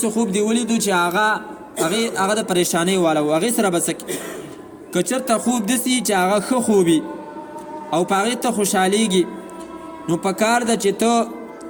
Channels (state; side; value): identical; both; correlation 1.00